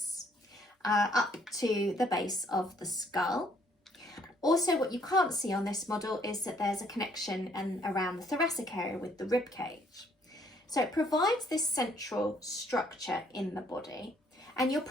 up to the base of the skull. Also, what you can't see on this model is that there's a connection around the thoracic area with the rib cage. So it provides this central structure in the body, and you're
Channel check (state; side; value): normal; both; correlation 0.66